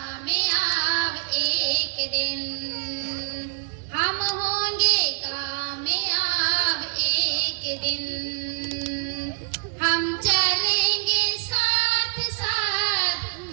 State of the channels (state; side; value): silent; left; 58 dB below the other